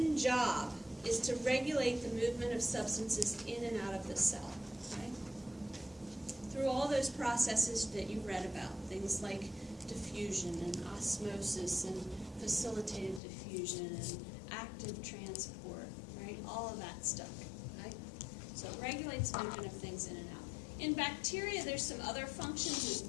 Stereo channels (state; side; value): drops out; right; at 13.2 s